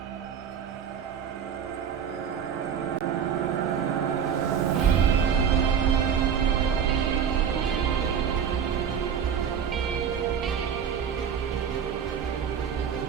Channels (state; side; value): quieter; left; 7.8 dB